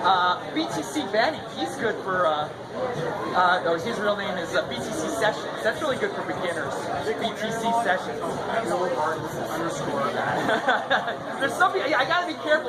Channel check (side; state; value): both; identical; correlation 1.00